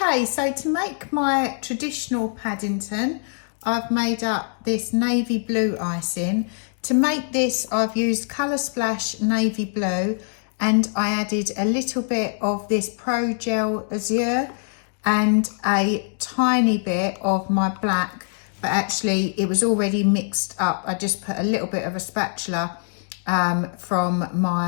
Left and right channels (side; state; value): right; silent; digital silence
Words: Okay, so to make my traditional Paddington, I've made up this navy blue icing. To make this, I've used Colour Splash navy blue, and I added a little bit of this ProGel Azure and a tiny bit of my black, but actually it was already mixed up. I just put a little bit of a spatula from